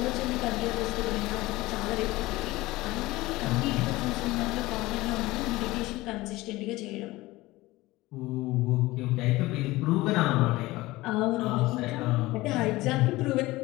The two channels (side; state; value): right; quieter; 19.3 dB